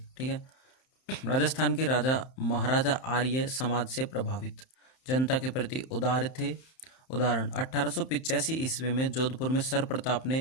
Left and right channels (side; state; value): right; late; 31 ms